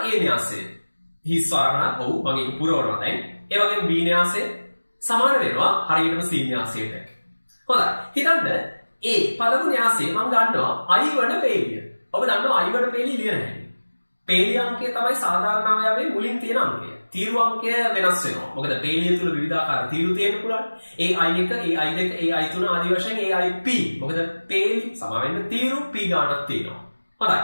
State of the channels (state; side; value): inverted; both; correlation -1.00